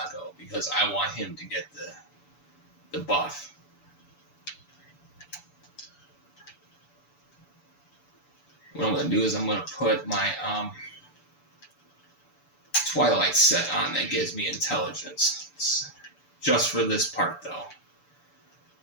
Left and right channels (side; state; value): right; late; 6.9 ms